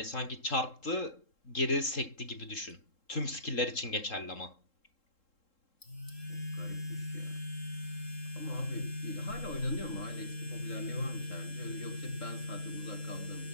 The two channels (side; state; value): right; late; 3.7 ms